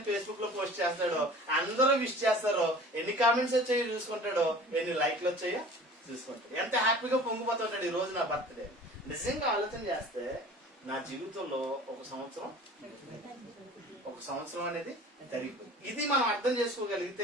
ఫేస్బుక్ లో పోస్ట్ చేస్తాడో, అందరూ విష్ చేస్తారో, ఎన్ని కామెంట్స్ వచ్చాయో చూసుకుంటాడో, ఎన్ని లైక్లు వచ్చాయో చూసుకుంటాడు. ఎంత హ్యాపీగా పొంగిపోతుంటాడు ఈ రోజు నా బర్త్డే. నిజంగా ఆలోచన చేస్తే నా జీవితంలో ఒక సంవత్సరం అనేది జరిగిపోయింది. ఇది మనం అర్థం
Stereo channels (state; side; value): normal; both; correlation 0.43